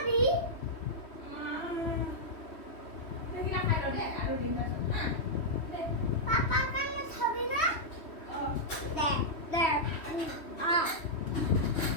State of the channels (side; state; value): right; late; 3.1 ms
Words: এইকেইটা খাই লওঁ দেই আৰু দিম তাৰপিছত হা